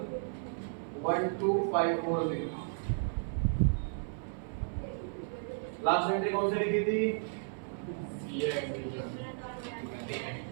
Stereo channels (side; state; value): left; silent; 55 dB below the other